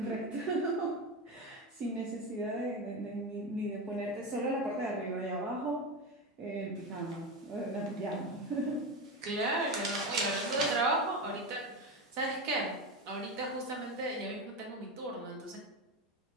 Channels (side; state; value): both; normal; correlation 0.18